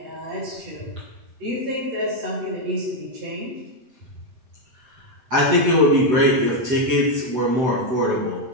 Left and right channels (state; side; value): late; left; 7.9 ms